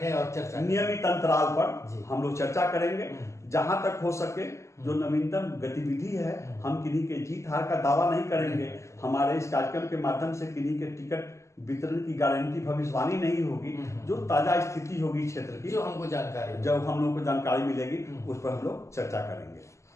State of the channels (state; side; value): late; right; 0.14 ms